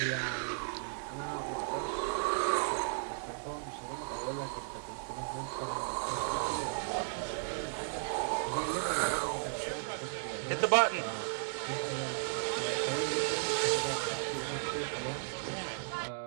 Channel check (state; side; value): silent; left; digital silence